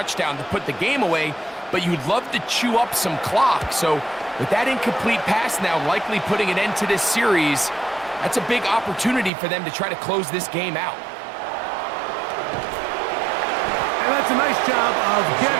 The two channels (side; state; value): left; drops out; at 9.3 s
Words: to put the game away, but you'd love to chew up some clock. So with that incomplete pass now likely putting an end to this series, that's a big opportunity for them to try to close this game out. And that's a nice job of